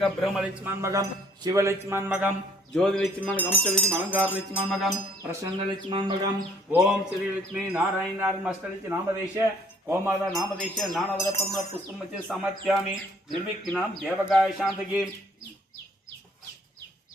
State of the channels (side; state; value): both; normal; correlation 0.60